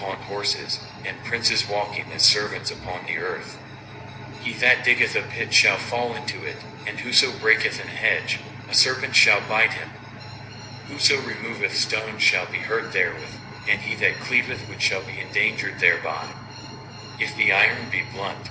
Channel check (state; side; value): identical; both; correlation 1.00